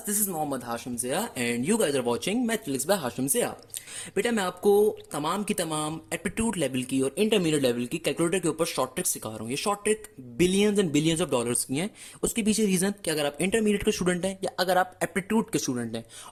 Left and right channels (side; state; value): both; identical; correlation 1.00